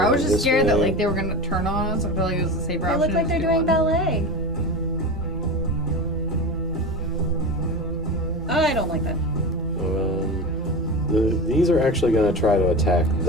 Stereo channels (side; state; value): both; normal; correlation 0.26